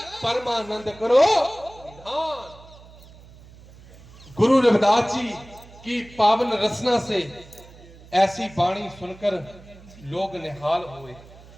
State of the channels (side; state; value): right; noise; hum, 21 dB below the sound